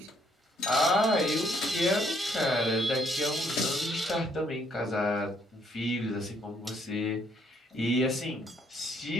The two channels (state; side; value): normal; both; correlation 0.69